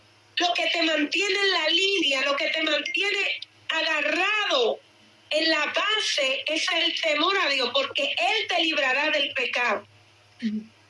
Lo que te mantiene en la línea, lo que te mantiene agarrado en la base es el temor a Dios, porque Él te librará del pecado.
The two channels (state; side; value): identical; both; correlation 1.00